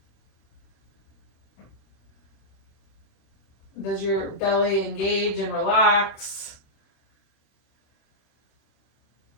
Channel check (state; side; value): late; right; 26 ms